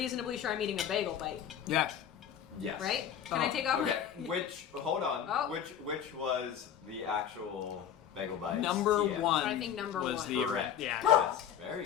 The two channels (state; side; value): quieter; right; 9.0 dB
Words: sure I'm eating a bagel bite. Yes. Yes. Right? Can I take over? Okay. Hold on. Oh. Which was the actual bagel bites? Number TM? one. I think number was one. the Correct. Yeah. Yes. Very